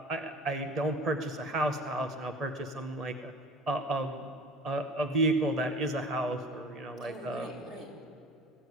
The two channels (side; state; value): both; normal; correlation 0.42